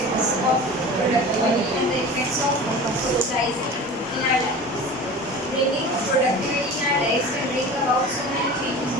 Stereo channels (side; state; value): both; normal; correlation 0.36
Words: of productivity and the effects of socializing in our lives. Bringing productivity in our lives can bring about so many changes